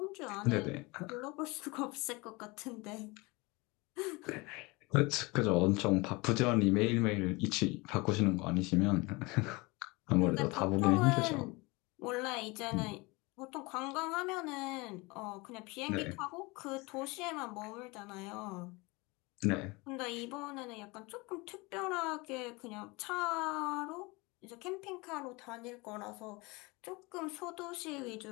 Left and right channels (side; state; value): right; quieter; 25.2 dB